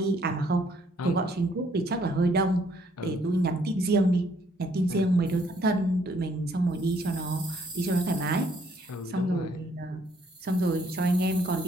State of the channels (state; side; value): normal; both; correlation 0.66